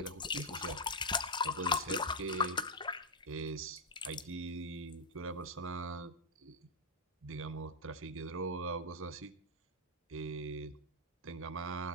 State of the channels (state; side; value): normal; both; correlation -0.01